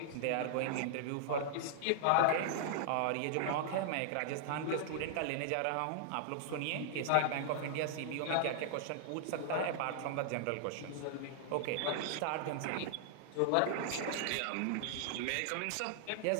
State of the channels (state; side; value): different; both; correlation -0.01